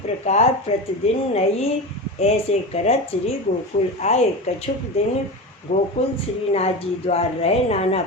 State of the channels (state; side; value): normal; both; correlation 0.25